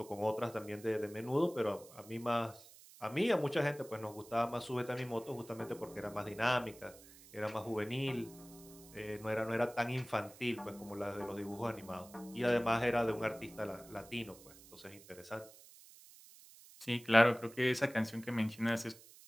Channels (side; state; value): right; noise; hiss, 21 dB below the sound